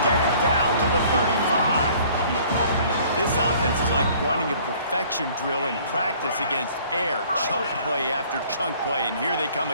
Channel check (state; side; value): inverted; both; correlation -0.54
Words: get it down to the 35. This offense is like running a perfection drill in practice against air. Chunk play after chunk play, and here they come